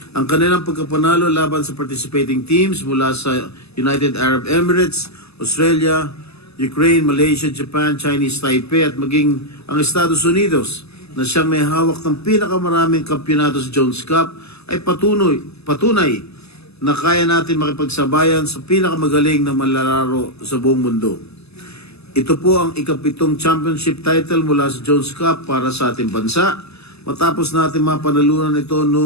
Ang kanilang pagkapanalo laban sa participating teams mula sa United Arab Emirates, Australia, Ukraine, Malaysia, Japan, Chinese Taipei at maging ang Estados Unidos na siyang may hawak ng pinakamaraming kampyonato sa Jones Cup ay patunay na kaya natin makipagsabayan sa pinakamagaling na manlalaro sa buong mundo. Ito po ang ika-7 championship title mula sa Jones Cup para sa ating bansa. Matapos natin mapanalunan ito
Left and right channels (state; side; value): late; right; 0.79 ms